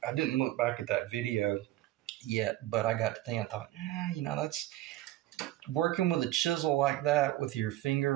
didn't look back at that video yet, but I got to think, I thought, that's working with a chisel like that with your finger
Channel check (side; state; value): left; quieter; 15.1 dB